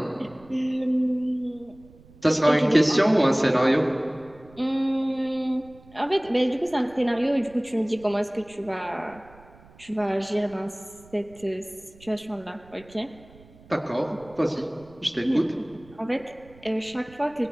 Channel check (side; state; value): right; noise; rumble, 24 dB below the sound